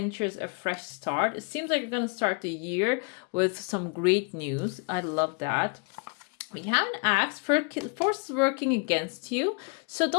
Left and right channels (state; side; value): quieter; right; 35.2 dB